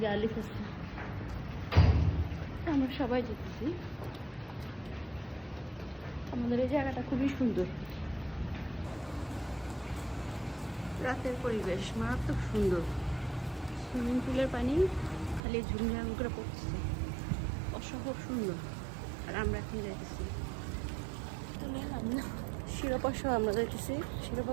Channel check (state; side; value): drops out; left; at 15.4 s